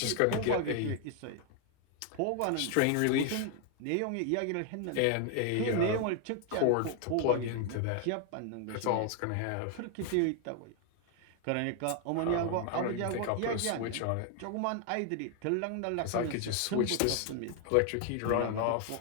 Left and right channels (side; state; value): both; different; correlation 0.00